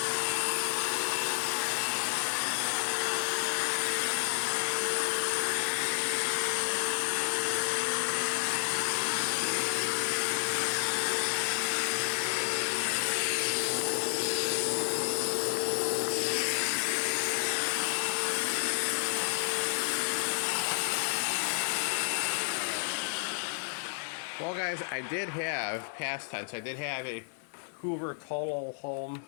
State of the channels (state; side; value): silent; right; digital silence